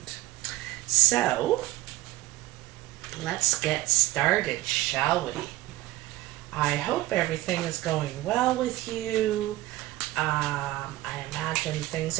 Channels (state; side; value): quieter; left; 17.4 dB